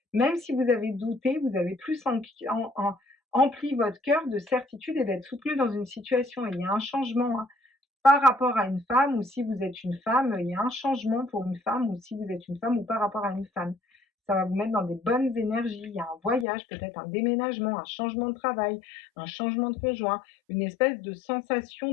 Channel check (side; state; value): right; drops out; at 16.4 s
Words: même si vous avez douté, vous avez plus empli votre cœur de certitude et d'être soutenu dans une situation. Et il y a un changement, hein, par rapport à une femme, ou si vous êtes une femme, il y a un changement pour une femme, ou si vous êtes une femme, ou par rapport à une femme. ça va vous mettre dans des bonnes énergies. Il y a un voyage, peut-être un déménagement, un changement de travail, un changement de conjoint, une espèce de sensation